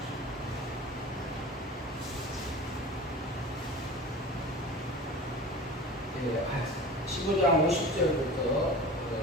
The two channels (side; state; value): both; normal; correlation 0.36